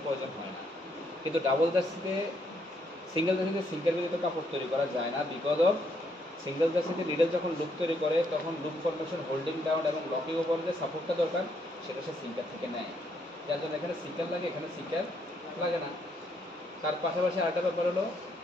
প্রয়োজন হয় না। কিন্তু ডাবল জার্সিতে, সিঙ্গেল জার্সিতে সিঙ্কার ব্যতীত কাপড় তৈরি করা যায় না, বিকজ অফ সিঙ্গেল জার্সিতে নিডেল যখন লুপ তৈরি করে তখন লুপ ফরমেশন, হোল্ডিং ডাউন এবং লকিং ওভার যে সাপোর্টটা দরকার সেটা সে সিঙ্কার থেকে নেয়, যার জন্য এখানে সিঙ্কার লাগে, এখানে সিঙ্কার লাগে না। তার পাশাপাশি আরেকটা ব্যাপার হলো,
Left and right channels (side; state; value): both; normal; correlation 0.73